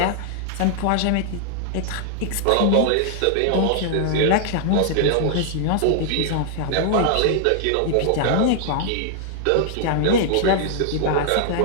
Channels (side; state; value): both; different; correlation -0.01